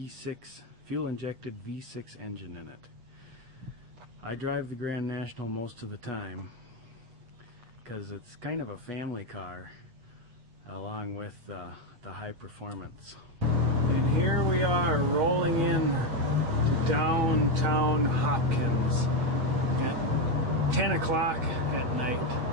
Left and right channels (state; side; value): late; left; 8.3 ms